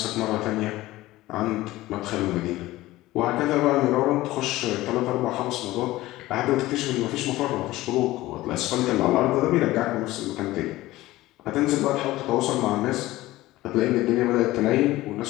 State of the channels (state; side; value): quieter; right; 17.4 dB